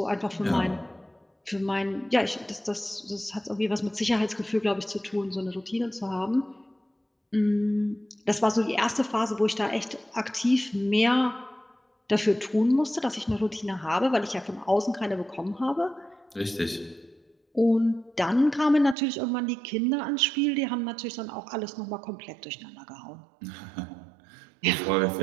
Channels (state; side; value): drops out; left; at 18.9 s